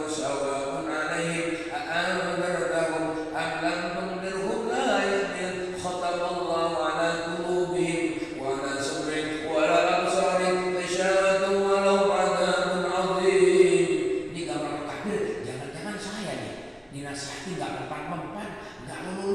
sawa'un 'alaihim a'anzartahum am lam tunzirhum la yu'minun khatamallahu 'ala qulubihim wa 'ala sam'ihim wa 'ala absarihim ghishawatun wa lahum 'adzabun 'adzim. Ini gambaran kafir, jangan-jangan saya nih dinasihati enggak mempan-mempan, enggak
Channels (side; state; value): both; identical; correlation 1.00